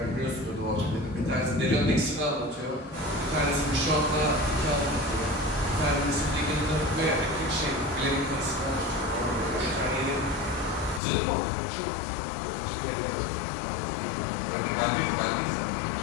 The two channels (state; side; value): drops out; right; at 11.0 s